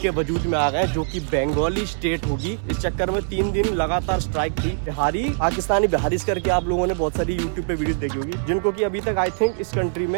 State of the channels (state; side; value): silent; left; digital silence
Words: के वजूद में आ गए जो कि बंगाली स्टेट होगी। इस चक्कर में 3 दिन लगातार स्ट्राइक थी। बिहारी पाकिस्तानी बिहारिश करके आप लोगों ने बहुत सारी यूट्यूब पे वीडियो देखी होगी, जिनको कि अभी तक आई थिंक इस कंट्री